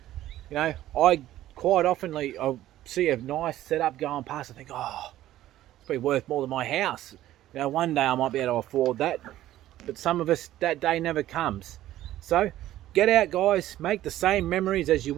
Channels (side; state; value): left; quieter; 13.8 dB